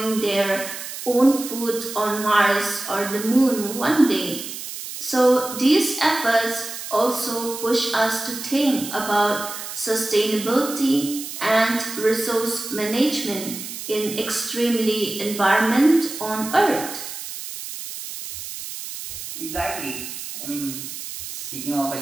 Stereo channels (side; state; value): right; noise; hiss, 9 dB below the sound